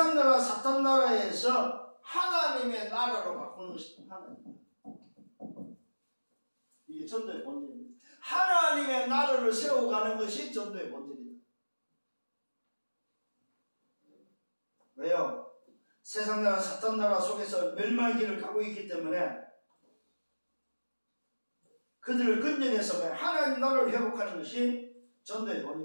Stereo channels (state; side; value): inverted; both; correlation -1.00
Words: 나라 사탄 나라에서 하나님의 나라로 바꾸는 것입니다. 하나님. 이게 전도의 본질입니다. 하나님의 나라를 세워가는 것이 전도의 본질이다. 왜요? 세상 나라 사탄 나라 속에서 멸망의 길을 가고 있기 때문에 그들을 건져내서 하나님 나라를 회복하는 것이 전도의